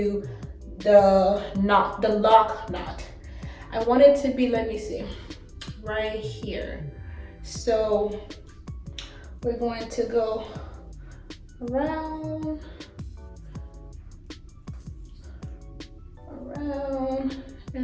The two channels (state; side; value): identical; both; correlation 1.00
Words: the lock knot. I want it to be, let me see, right here. So we're going to go around,